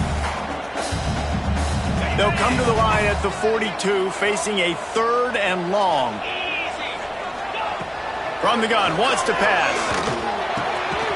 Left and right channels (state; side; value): identical; both; correlation 1.00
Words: They'll come to the line at the 42, facing a 3rd and long. From the gun, wants to pass.